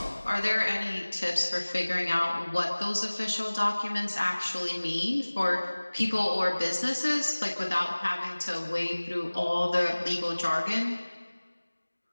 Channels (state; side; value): inverted; both; correlation -1.00